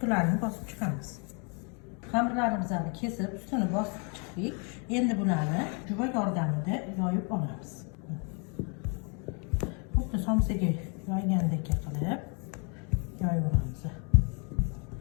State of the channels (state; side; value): quieter; right; 36.5 dB